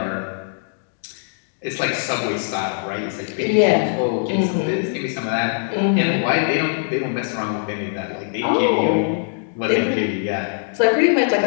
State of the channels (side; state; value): right; silent; digital silence